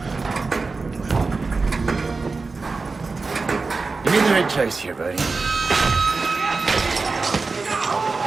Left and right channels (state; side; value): quieter; left; 4.1 dB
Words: You made the right choice here, buddy.